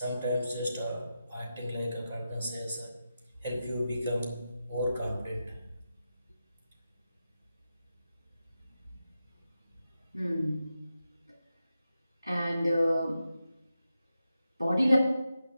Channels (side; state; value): both; inverted; correlation -0.89